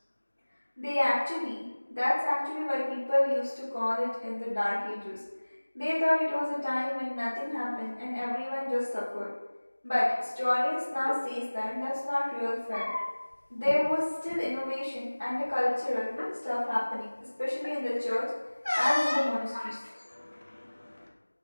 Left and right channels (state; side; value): inverted; both; correlation -1.00